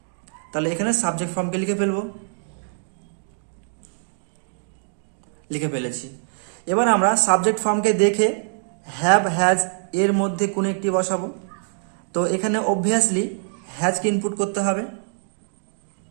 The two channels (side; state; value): left; silent; digital silence